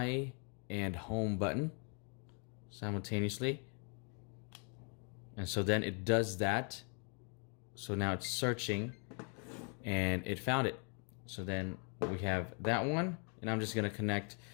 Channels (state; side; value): quieter; right; 38.6 dB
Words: and home button simultaneously, and so then it does that. So now it's searching and it found it. So then we have that one, and I'm just going to connect